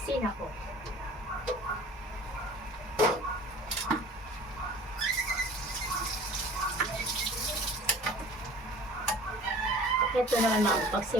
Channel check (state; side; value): normal; both; correlation 0.45